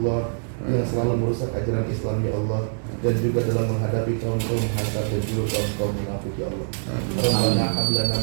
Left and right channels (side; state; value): left; silent; digital silence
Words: yang selalu merusak ajaran Islam ya Allah, dan juga dalam menghadapi kaum-kaum hasad dan juga kaum-kaum munafik ya Allah. Rabbana hab lana